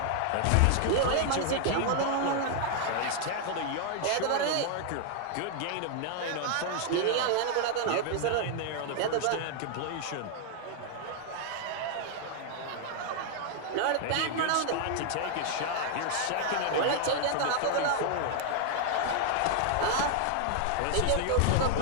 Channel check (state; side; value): different; both; correlation 0.00